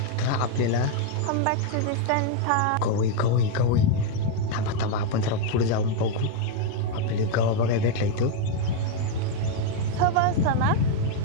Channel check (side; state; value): both; different; correlation 0.01